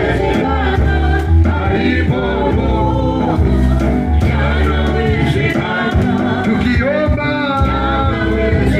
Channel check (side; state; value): both; identical; correlation 1.00